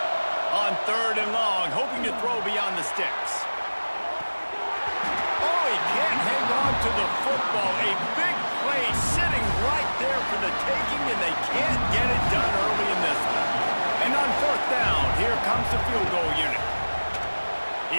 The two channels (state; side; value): inverted; both; correlation -1.00